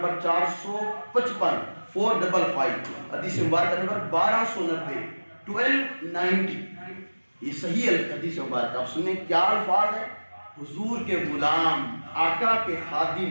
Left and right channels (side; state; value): both; inverted; correlation -1.00